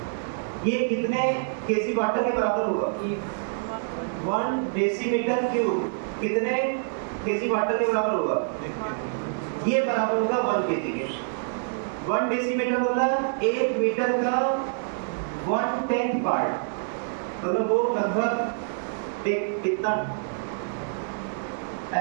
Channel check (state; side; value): silent; left; digital silence